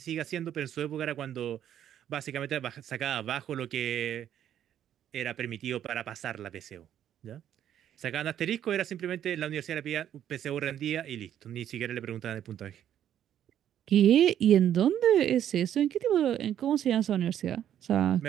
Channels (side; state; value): left; quieter; 10.4 dB